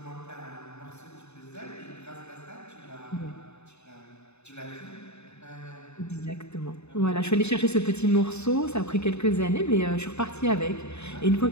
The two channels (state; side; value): late; right; 0.81 ms